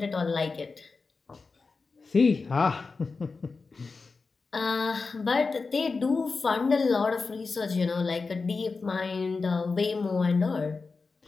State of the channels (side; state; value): right; quieter; 4.3 dB